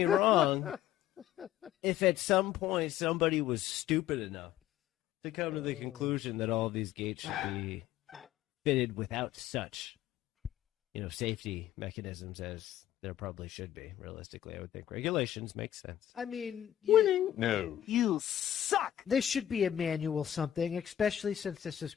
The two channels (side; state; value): right; quieter; 11.7 dB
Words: wrong. If at some point somebody was stupid enough to come to the conclusion that all of these gates should be fitted without such, safety mechanisms as there probably should be, realistically, I would think regulations make sense. I mean, No. You suck. This should be a manual something, especially since this is